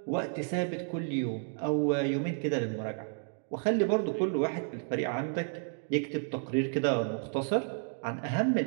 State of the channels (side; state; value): left; silent; 57 dB below the other